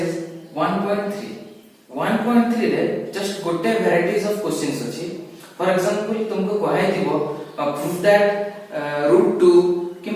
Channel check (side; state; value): both; identical; correlation 1.00